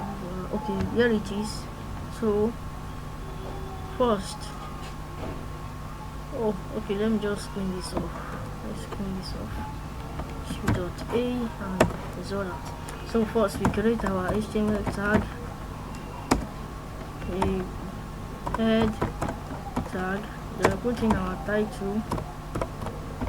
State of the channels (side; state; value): both; identical; correlation 1.00